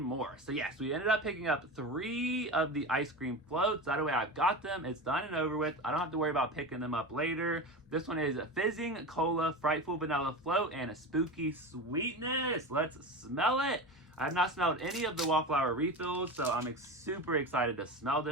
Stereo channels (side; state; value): both; normal; correlation 0.25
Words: more. So yes, we ended up picking up 3 of the ice cream floats. That way I've got them. It's done and over with. I don't have to worry about picking them up later. This one is Fizzing Cola, Frightful Vanilla Float, and a Spooky Sweetness. Let's smell it. I have not smelled any of the Wallflower refills, so I'm super excited to smell